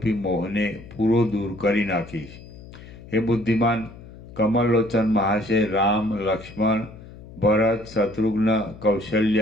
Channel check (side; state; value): left; noise; hum, 17 dB below the sound